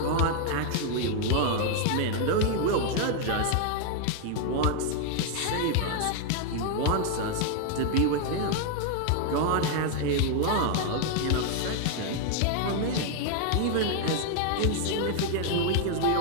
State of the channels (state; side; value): different; both; correlation 0.00